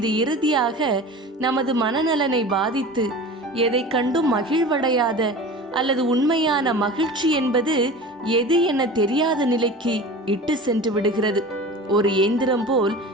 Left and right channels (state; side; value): normal; both; correlation 0.36